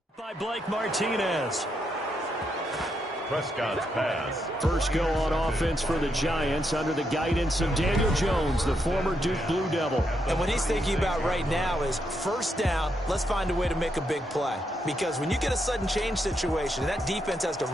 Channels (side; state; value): both; normal; correlation 0.80